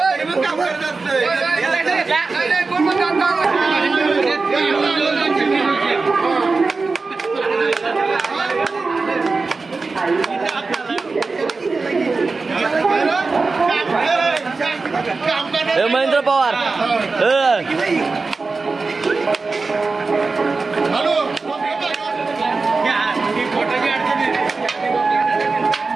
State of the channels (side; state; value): left; quieter; 4.0 dB